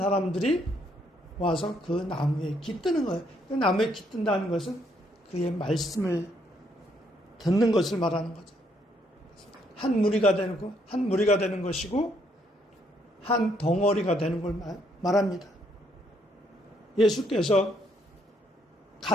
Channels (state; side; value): normal; both; correlation 0.71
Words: 와서 그 나무에 깃드는 거예요. 그 나무에 깃든다는 것은 그의 말씀을 듣는 것을 말하는 거죠. 한 무리가 되는 것이고 한 덩어리가 되는 걸 말합니다. 예수께서